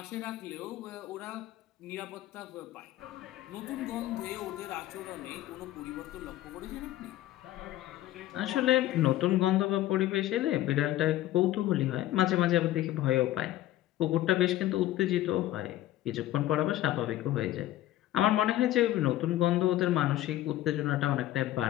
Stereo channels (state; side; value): quieter; right; 14.4 dB